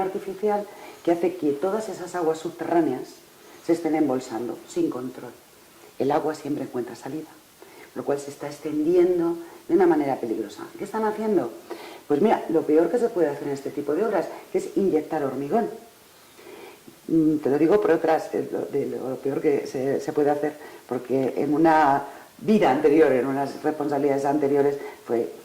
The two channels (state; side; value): identical; both; correlation 1.00